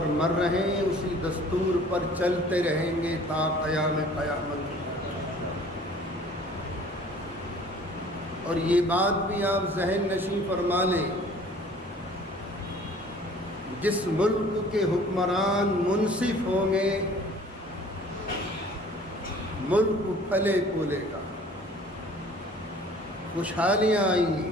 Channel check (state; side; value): normal; both; correlation 0.50